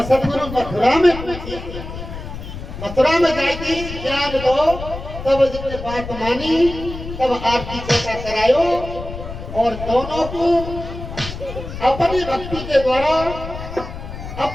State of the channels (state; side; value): noise; left; rumble, 10 dB below the sound